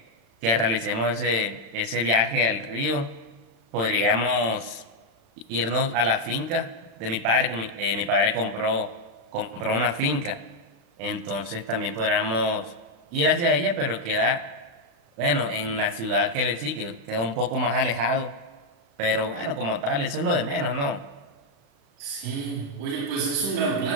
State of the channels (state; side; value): late; left; 35 ms